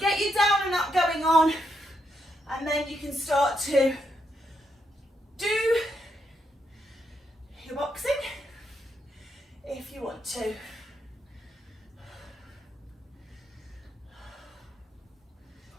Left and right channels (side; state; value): both; normal; correlation 0.80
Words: your down and up going on, and then you can start to do your boxing if you want to.